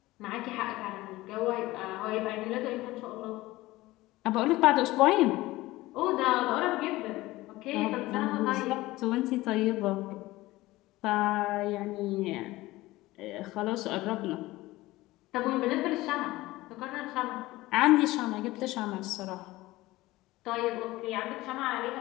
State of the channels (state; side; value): quieter; right; 18.5 dB